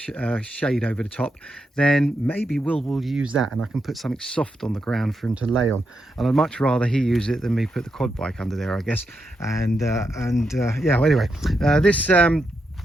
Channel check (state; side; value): normal; both; correlation 0.84